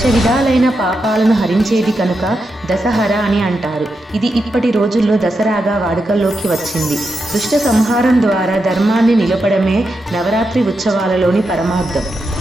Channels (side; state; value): both; normal; correlation 0.86